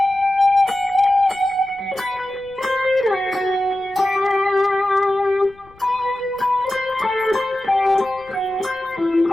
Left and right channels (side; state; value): left; noise; rumble, 27 dB below the sound